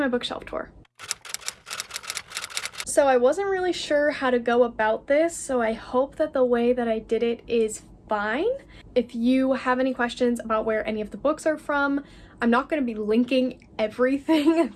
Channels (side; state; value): both; identical; correlation 1.00